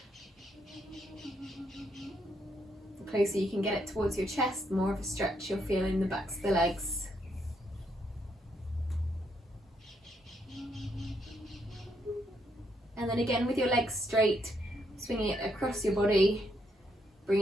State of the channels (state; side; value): normal; both; correlation 0.76